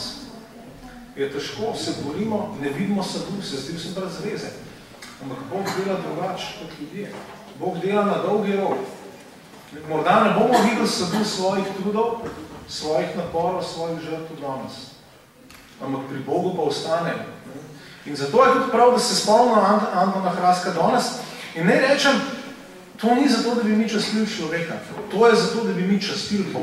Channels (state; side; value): identical; both; correlation 1.00